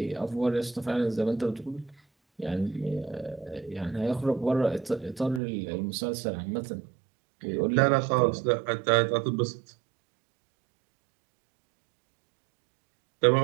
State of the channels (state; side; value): drops out; left; at 5.4 s